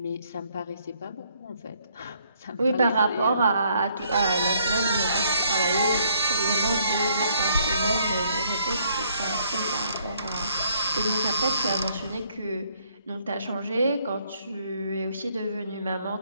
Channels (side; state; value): both; inverted; correlation -0.68